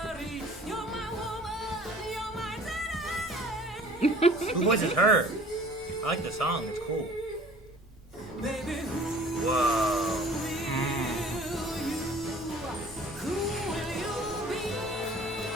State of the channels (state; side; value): normal; both; correlation 0.49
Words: Who voices her? I like the song, it's cool. Whoa.